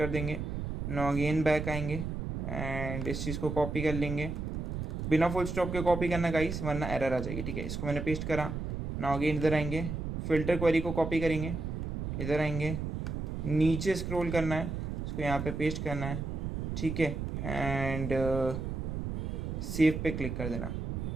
देंगे। नाउ अगेन बैक आएंगे एंड इस चीज़ को कॉपी कर लेंगे, बिना फुल स्टॉप के कॉपी करना गाइस, वरना एरर आ जाएगी। ठीक है, इसको मैंने पेस्ट करा। नाउ अगेन इधर आएंगे, फ़िल्टर क्वेरी को कॉपी करेंगे, इधर आएंगे, नीचे स्क्रॉल करना है, इसको यहाँ पे पेस्ट करना है। ठीक है, एंड सेव पे क्लिक कर देना।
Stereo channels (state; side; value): noise; right; rumble, 4 dB below the sound